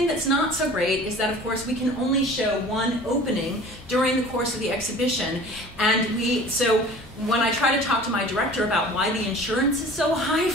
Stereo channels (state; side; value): normal; both; correlation 0.44